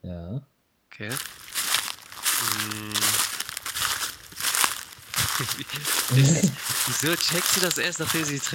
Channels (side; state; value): both; identical; correlation 1.00